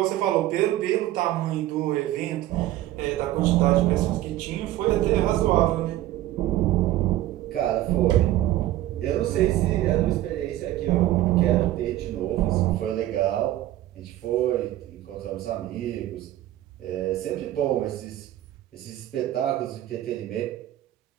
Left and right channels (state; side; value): quieter; left; 14.4 dB